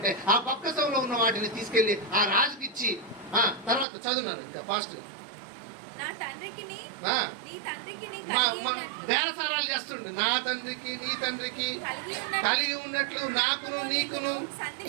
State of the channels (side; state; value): left; drops out; at 3.9 s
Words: ఆ బొక్కసంలో ఉన్న వాటిని తీసుకెళ్లి ఆ రాజుకి ఇచ్చి తర్వాత చదువున్నాను ఇంకా ఫాస్ట్ గా బేరసారాలు చేస్తుండే. నా తండ్రికి నీ తండ్రికి కలిగి ఉన్నట్లు నాకును నీకును